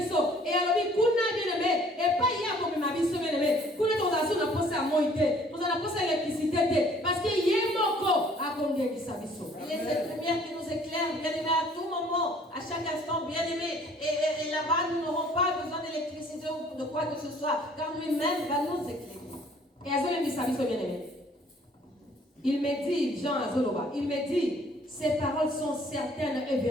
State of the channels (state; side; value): normal; both; correlation 0.57